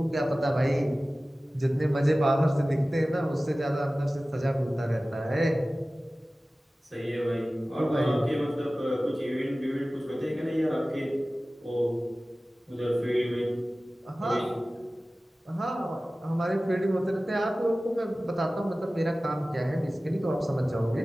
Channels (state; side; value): normal; both; correlation 0.97